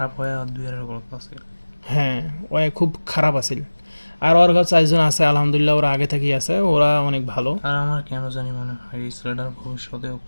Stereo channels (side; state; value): both; inverted; correlation -1.00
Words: হয়ে আর দুই এর গল্প আছে। হ্যাঁ ওই খুব খারাপ আছিল। আর ওর কাছে 4 জন আছে আলহামদুলিল্লাহ, ওরা আগে থেকেই আছে, ওরা অনেক ভালো। আর আমার কেন জানি মনে হয় এই ছেলেটার ভবিষ্যতেও